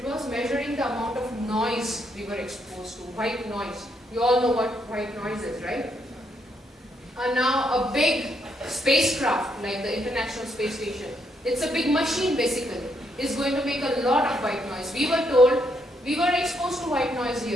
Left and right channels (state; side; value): normal; both; correlation 0.76